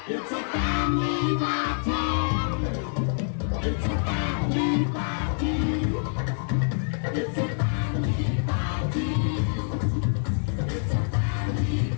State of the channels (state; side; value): silent; right; 60 dB below the other